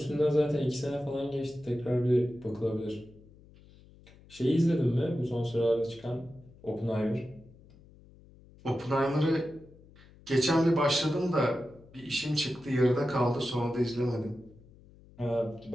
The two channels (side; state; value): left; noise; hum, 24 dB below the sound